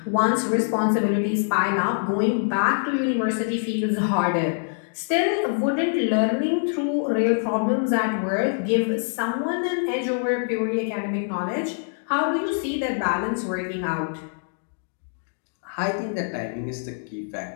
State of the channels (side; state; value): right; silent; digital silence